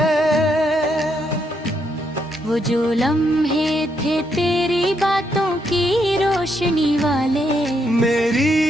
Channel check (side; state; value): both; normal; correlation 0.77